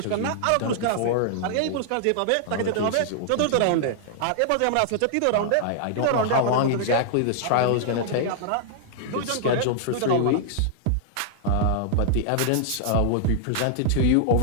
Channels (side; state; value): both; different; correlation -0.01